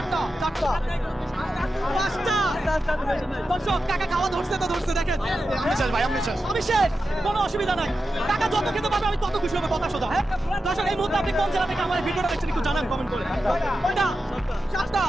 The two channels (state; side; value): normal; both; correlation 0.91